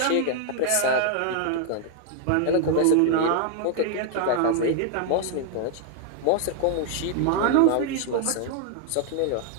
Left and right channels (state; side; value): different; both; correlation 0.00